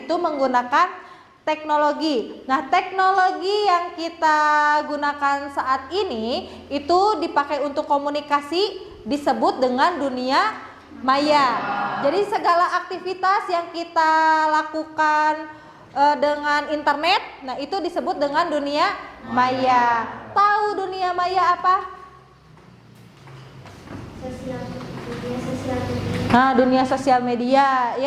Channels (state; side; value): identical; both; correlation 1.00